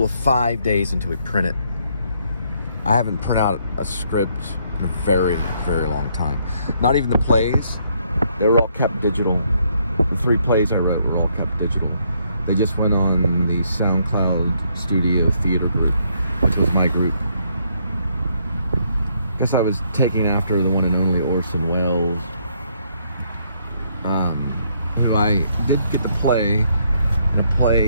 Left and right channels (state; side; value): inverted; both; correlation -0.71